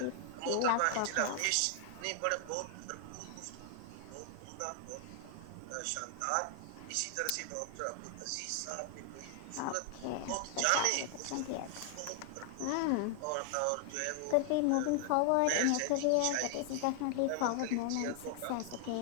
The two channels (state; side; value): different; both; correlation 0.00